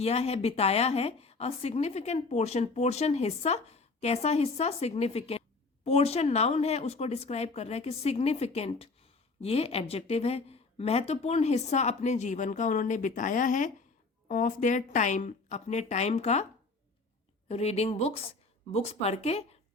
है, बिताया है, अ सिग्निफिकेंट पोर्शन, पोर्शन हिस्सा, कैसा हिस्सा, सिग्निफिकेंट, पोर्शन नाउन है, उसको डिस्क्राइब कर रहा है कि सिग्निफिकेंट ये एडजेक्टिव है, महत्वपूर्ण हिस्सा अपने जीवन का उन्होंने बिताया है, ऑफ देयर टाइम अपने टाइम का, रीडिंग बुक्स, बुक्स पढ़ के,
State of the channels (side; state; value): right; quieter; 3.8 dB